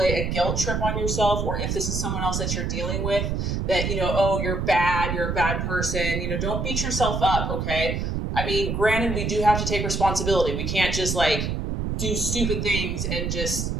a guilt trip on yourself, or if this is someone else that you're dealing with, that, you know, oh, you're a bad person. You know, don't beat yourself up, okay? I mean, granted, we do have to take responsibility. We can't just like do stupid things and just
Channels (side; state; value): right; noise; rumble, 1 dB below the sound